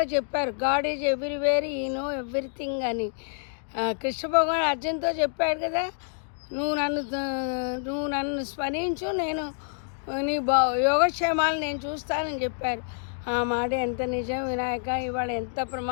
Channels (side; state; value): right; silent; digital silence